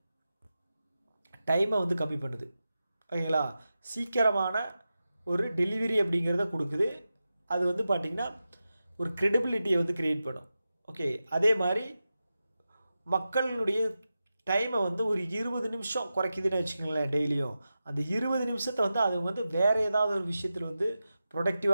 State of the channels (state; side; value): inverted; both; correlation -0.92